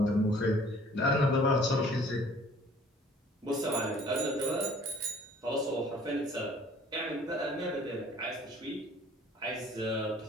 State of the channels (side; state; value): both; normal; correlation 0.53